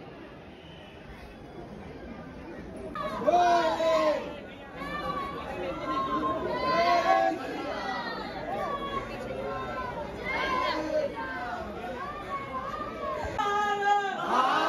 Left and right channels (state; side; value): identical; both; correlation 1.00